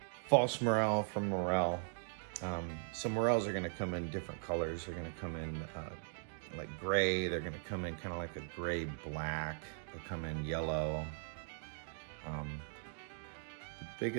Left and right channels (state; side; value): silent; left; digital silence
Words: false morel from morel. Some morels are going to come in different colors. They're going to come in like gray. They're going to come in kind of like a gray black. They'll come in yellow. The